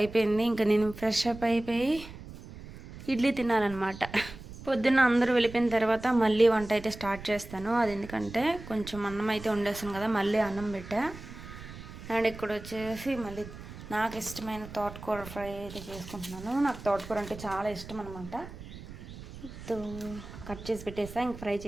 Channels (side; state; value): right; noise; rumble, 14 dB below the sound